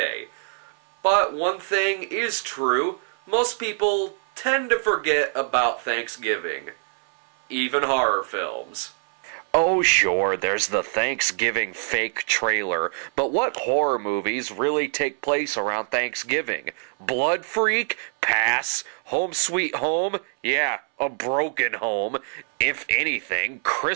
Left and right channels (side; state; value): left; silent; digital silence